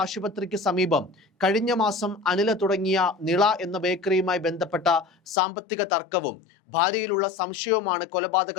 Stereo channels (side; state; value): right; drops out; at 5.4 s